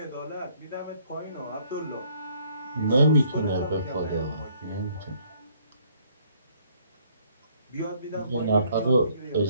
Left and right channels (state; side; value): inverted; both; correlation -0.64